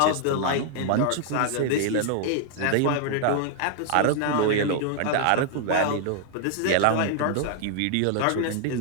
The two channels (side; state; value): both; different; correlation 0.00